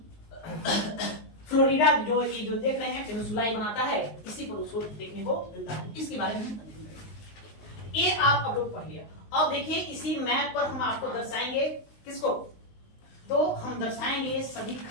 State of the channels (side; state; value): right; late; 19 ms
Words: फ्लोरिडा, जो ये जो देख रहे हैं पेनिनसुला बनाता है, इसी पर उसको देखने को मिलता है। इसके बारे में ये आप अब लोग पढ़ लिया। अब देखिए इसी मैप पर हम आपको दर्शाएंगे किसको? तो हम दर्शाएंगे सभी